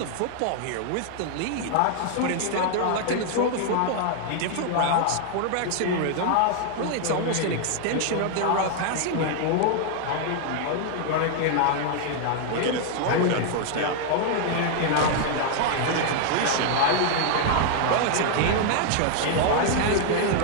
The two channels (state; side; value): different; both; correlation 0.00